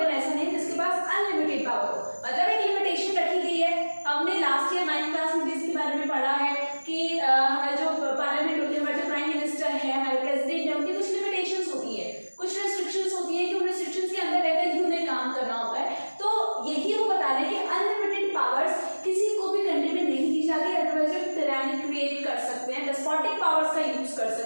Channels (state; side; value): inverted; both; correlation -1.00